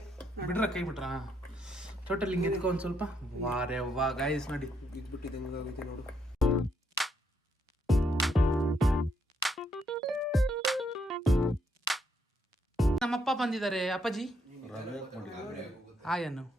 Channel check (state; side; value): normal; both; correlation 0.74